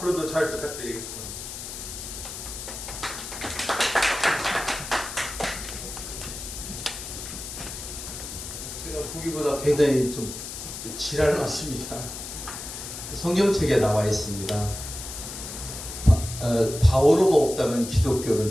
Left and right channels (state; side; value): noise; left; hiss, 9 dB below the sound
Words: 잘 부탁드리겠습니다. 보기보다 굉장히 좀 지랄 많습니다. 성경책에 나와 있습니다. 바오로가 없다면 기독교는